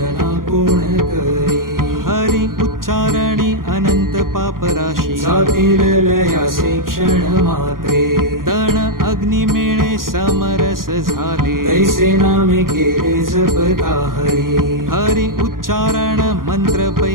कोण करी हरी उच्चारणी अनंत पापराशी जातील लयासे क्षण मात्रे तण अग्नी मेळे समरस झाले तैसे नामे केले जपता हरी हरी उच्चारण मंत्र पै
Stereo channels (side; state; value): left; late; 0.91 ms